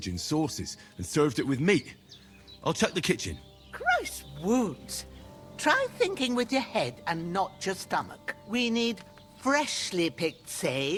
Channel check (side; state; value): both; identical; correlation 1.00